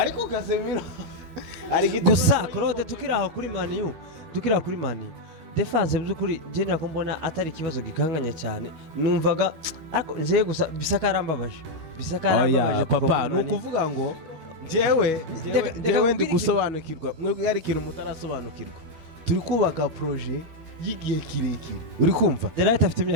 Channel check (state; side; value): late; left; 12 ms